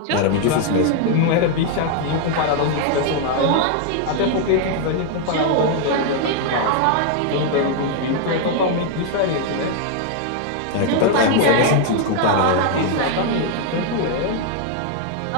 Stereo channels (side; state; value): both; different; correlation 0.00